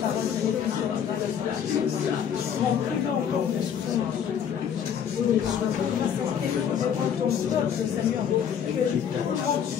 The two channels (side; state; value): right; quieter; 8.3 dB